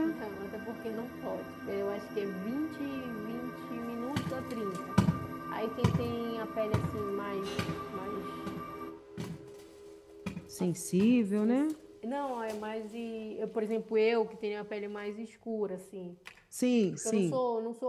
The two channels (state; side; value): identical; both; correlation 1.00